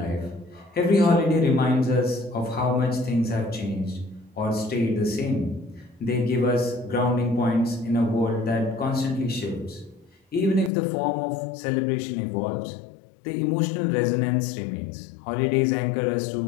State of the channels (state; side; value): drops out; right; at 10.7 s